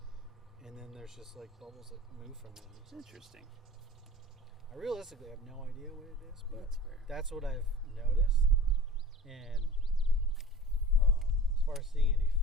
And then there's just like bubbles that move from it. It's interesting. I realistically have no idea what it is, but that's fair. That's what I've noticed. And as far as seeing any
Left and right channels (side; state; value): both; normal; correlation 0.40